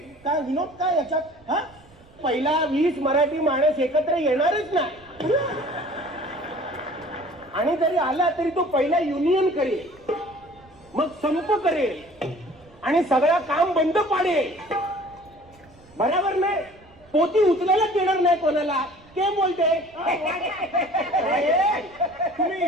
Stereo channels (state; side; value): noise; right; rumble, 27 dB below the sound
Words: काय विनोद काय याच्यात. हा, पहिला 20 मराठी माणूस एकत्र येणारच नाही, आणि जरी आला तरी तो पहिला युनियन करेल, मग संप करेल आणि सगळं काम बंद पाडेल. बरोबर नाही. पोती उचलायला देणार नाही कोणाला. के बोलते. तुम्ही